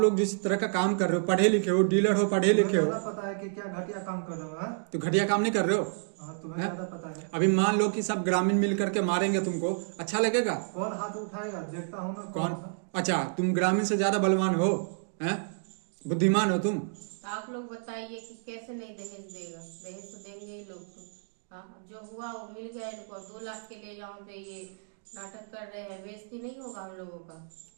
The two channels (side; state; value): left; silent; digital silence